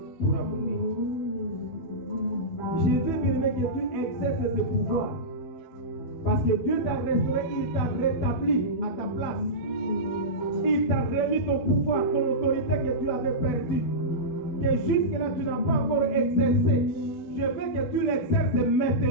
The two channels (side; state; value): right; late; 12 ms